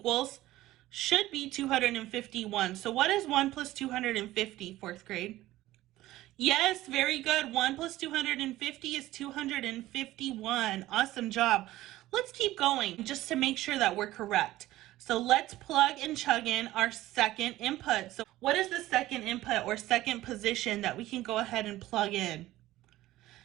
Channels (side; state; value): left; quieter; 16.0 dB